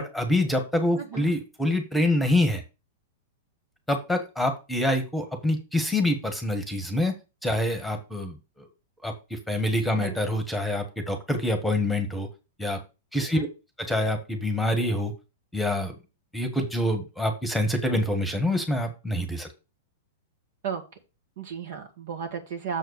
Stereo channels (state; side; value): normal; both; correlation 0.68